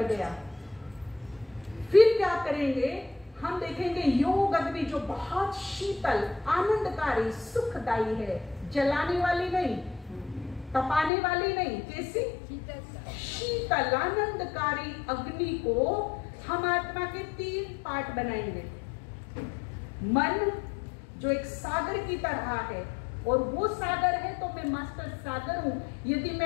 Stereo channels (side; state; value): right; drops out; at 11.1 s